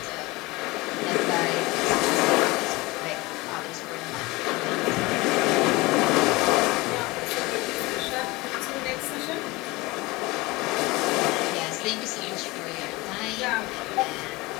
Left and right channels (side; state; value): right; quieter; 22.3 dB